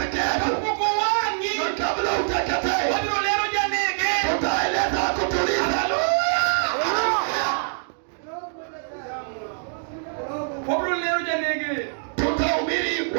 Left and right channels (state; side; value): silent; left; digital silence